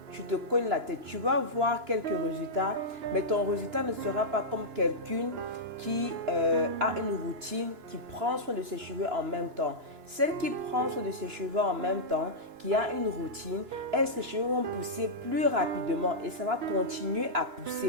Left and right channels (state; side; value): late; left; 2.9 ms